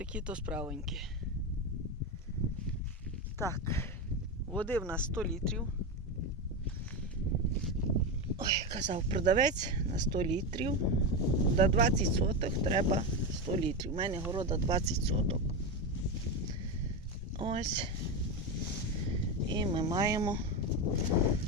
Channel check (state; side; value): normal; both; correlation 0.15